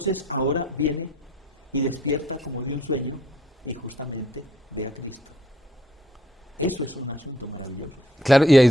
ahora viene y despierta como de un sueño y justamente ve a Cristo. Eso es un asunto maravilloso. Claro, y ahí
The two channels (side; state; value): both; normal; correlation 0.64